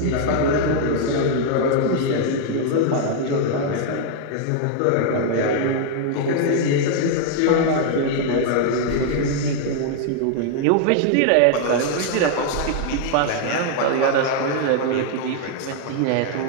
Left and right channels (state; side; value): different; both; correlation 0.00